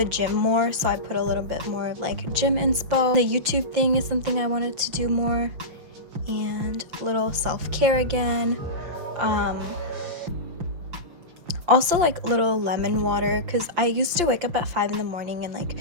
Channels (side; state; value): left; late; 5.8 ms